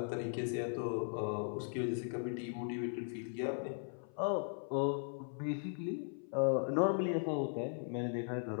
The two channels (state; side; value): silent; right; 52 dB below the other